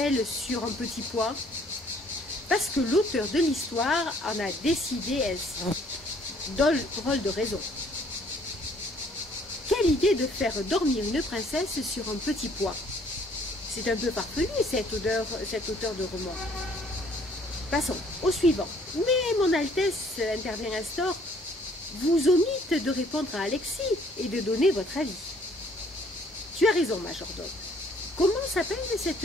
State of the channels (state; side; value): normal; both; correlation 0.61